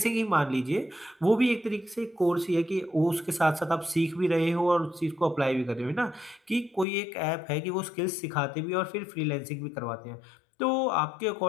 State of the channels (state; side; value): drops out; right; at 6.9 s